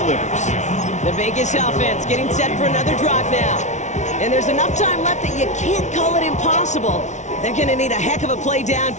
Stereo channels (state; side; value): late; right; 0.34 ms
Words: The Vegas offense getting set for another drive now. And there's enough time left that you can't call it impossible. They're going to need a heck of a play